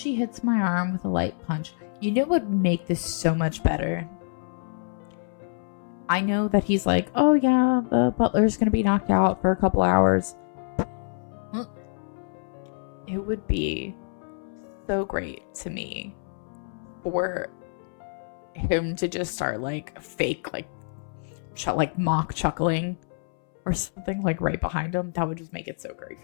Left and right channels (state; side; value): silent; right; 60 dB below the other